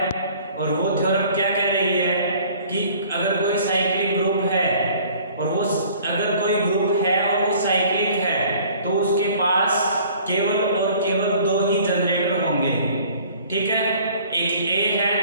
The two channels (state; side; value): inverted; both; correlation -0.52